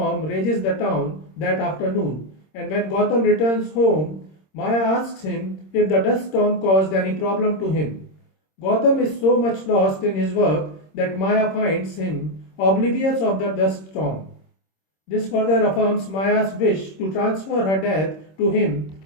rages the town that afternoon, and when Gotham returns home, Maya asks him if the dust storm caused any problem to him. Gotham is so much lost in his work that Maya finds him oblivious of the dust storm. This further affirms Maya's wish to transfer her death to him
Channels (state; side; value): late; right; 26 ms